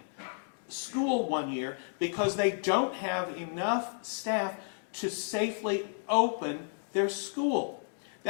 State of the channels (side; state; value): right; silent; digital silence